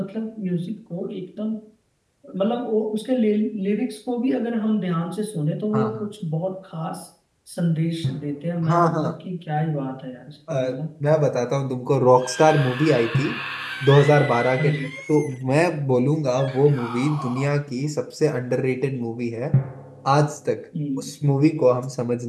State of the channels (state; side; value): identical; both; correlation 1.00